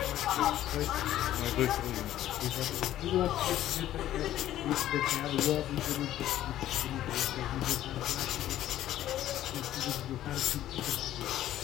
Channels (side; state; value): right; quieter; 12.9 dB